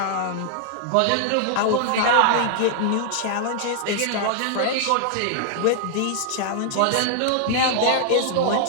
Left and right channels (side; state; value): both; different; correlation -0.01